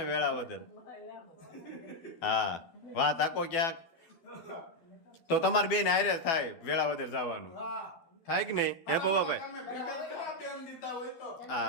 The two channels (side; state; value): right; late; 12 ms